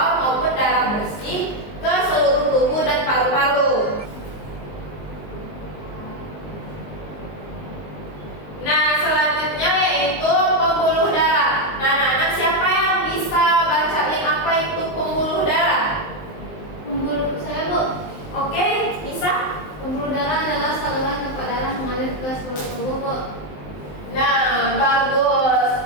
maupun darah bersih ke seluruh tubuh dan paru-paru. Nah, selanjutnya yaitu pembuluh darah. Nah, anak-anak, siapa yang bisa bacain apa itu pembuluh darah? Pembuluh saya, Bu. Oke, bisa? Pembuluh darah adalah saluran tempat darah mengalir ke seluruh tubuh, Bu. Nah, bagus.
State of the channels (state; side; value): late; right; 20 ms